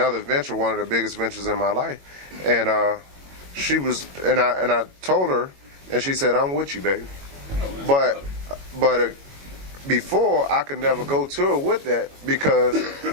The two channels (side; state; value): left; late; 22 ms